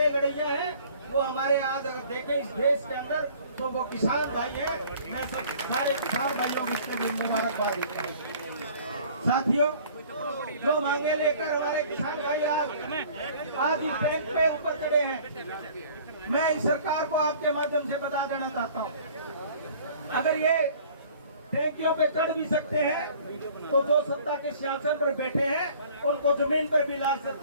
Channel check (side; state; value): both; inverted; correlation -0.51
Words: लड़ैया हैं वो हमारे आज अगर देखें इस देश के अंदर तो वो किसान भाई हैं। मैं सब सारे किसान भाइयों को इसके लिए मुबारकबाद देता हूँ। साथियों, जो मांगे लेकर हमारे किसान भाई आज इस बैंक पे ऊपर चढ़े हैं, मैं इस सरकार को आपके माध्यम से बता देना चाहता हूँ, अगर ये टैंकियों पे चढ़ भी सकते हैं तो जो सत्ता के सिंहासन पर बैठे हैं उनको जमीन पर भी ला